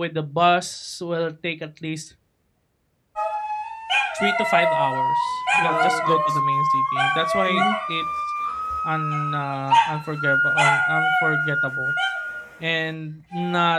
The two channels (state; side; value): identical; both; correlation 1.00